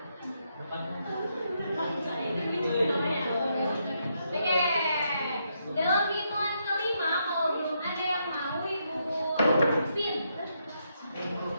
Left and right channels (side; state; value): both; inverted; correlation -0.79